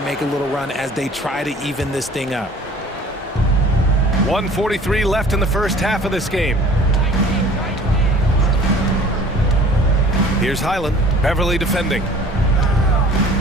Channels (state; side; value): normal; both; correlation 0.48